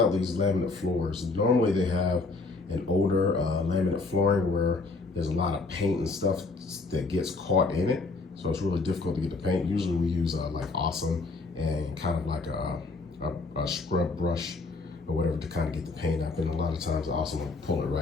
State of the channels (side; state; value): right; quieter; 3.8 dB